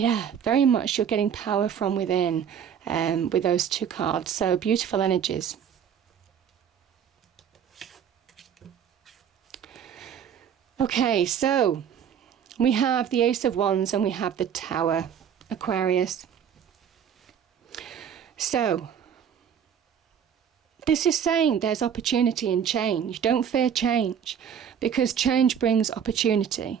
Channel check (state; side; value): quieter; left; 8.3 dB